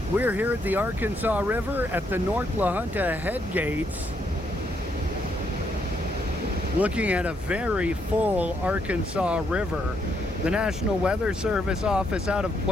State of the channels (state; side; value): normal; both; correlation 0.75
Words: We're here at the Arkansas River at the North La Junta Headgates, looking at a very full Arkansas River. The National Weather Service office out of